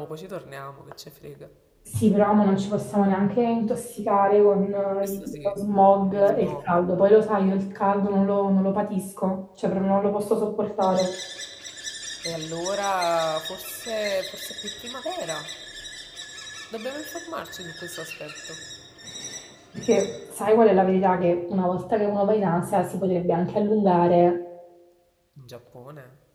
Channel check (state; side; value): identical; both; correlation 1.00